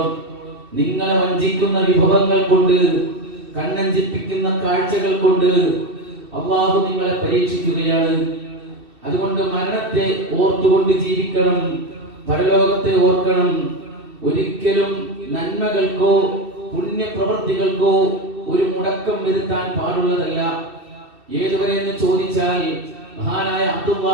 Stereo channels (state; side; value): late; left; 2.6 ms